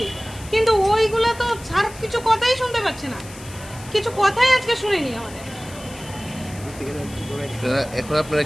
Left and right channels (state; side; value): noise; left; hiss, 18 dB below the sound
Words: কিন্তু ওইগুলো তো স্যার কিছু কথাই শুনতে পাচ্ছে না, কিছু কথাই আজকে শুনিনি আমাদের। এখন আপনারা